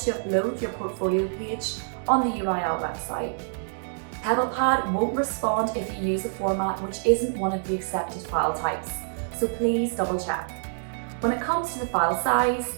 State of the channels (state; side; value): silent; left; digital silence